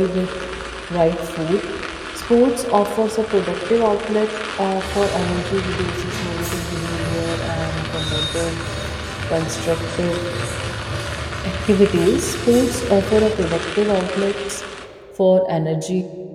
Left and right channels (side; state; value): both; identical; correlation 1.00